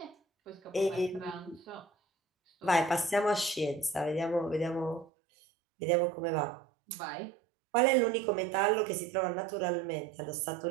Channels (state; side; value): drops out; left; at 5.1 s